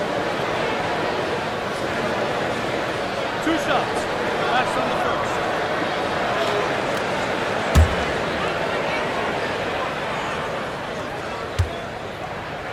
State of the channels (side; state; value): both; identical; correlation 1.00